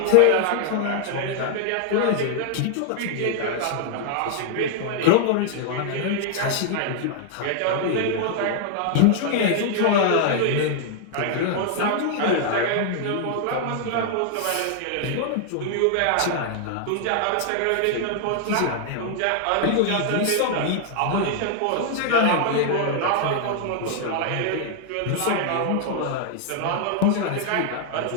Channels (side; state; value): both; different; correlation 0.00